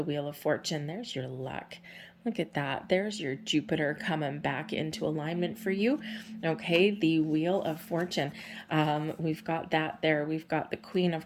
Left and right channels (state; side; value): identical; both; correlation 1.00